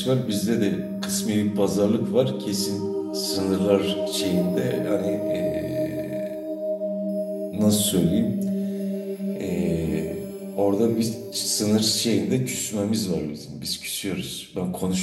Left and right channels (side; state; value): both; identical; correlation 1.00